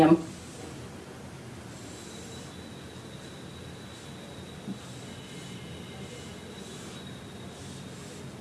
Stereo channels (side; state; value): both; identical; correlation 1.00